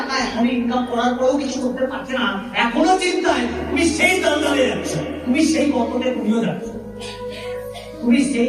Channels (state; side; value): identical; both; correlation 1.00